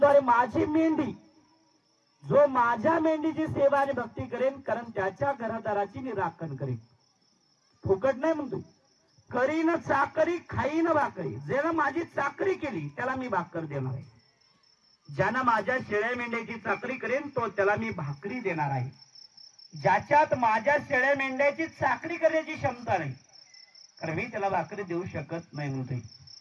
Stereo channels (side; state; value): both; identical; correlation 1.00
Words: अरे माझी मेंढी, जो माझ्या मेंढीची सेवा आणि भक्ती करेन, कारण त्याच्या घरादाराची मी राखण करेन, फुकट नाही म्हणतो, करीन चाकरी खाईन भाकरी, ज्यानं माझी चाकरी केली त्याला मी भाकर देणार आहे, ज्यानं माझ्या शेळ्या मेंढ्याची चाकरी करेन तो त्याला मी भाकरी देणार आहे। ज्याच्यात माझ्या शेळ्या मेंढ्याची चाकरी करण्याची क्षमता नाही, कारण मी त्याला भाकरी देऊ शकत नाही म्हणते,